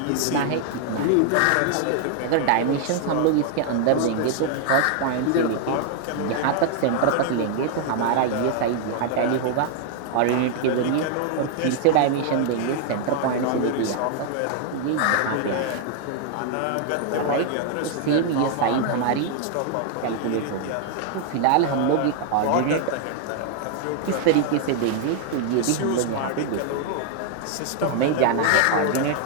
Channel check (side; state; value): both; different; correlation 0.00